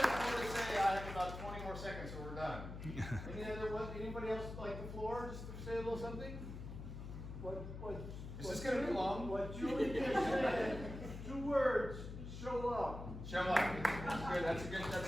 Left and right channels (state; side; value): noise; left; hum, 8 dB below the sound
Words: say I have about 20 more seconds or we're done. Anybody else like the floor? Just to say a little something? Is this going to be long? What Julie just said, 2 words, show up. Show up. That's good. That's